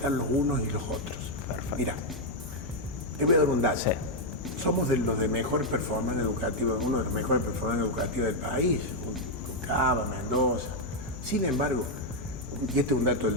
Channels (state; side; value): normal; both; correlation -0.01